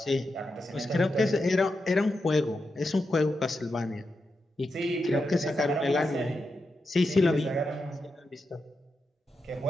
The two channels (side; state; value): both; normal; correlation 0.87